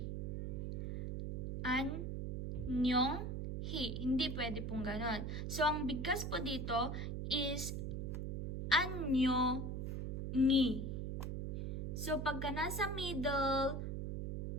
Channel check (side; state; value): right; noise; hum, 2 dB below the sound